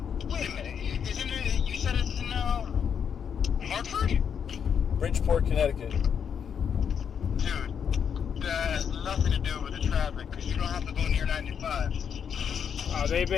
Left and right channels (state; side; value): quieter; right; 7.5 dB